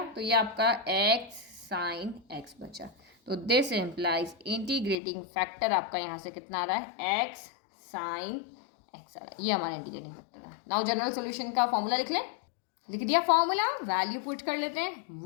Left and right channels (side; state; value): right; drops out; at 5.0 s